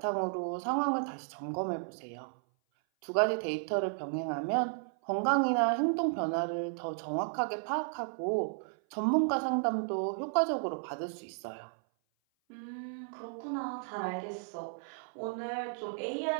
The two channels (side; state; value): left; silent; 55 dB below the other